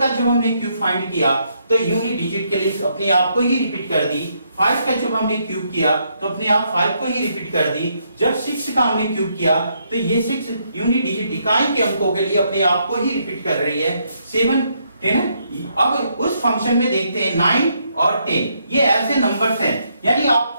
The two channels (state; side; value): inverted; both; correlation -0.75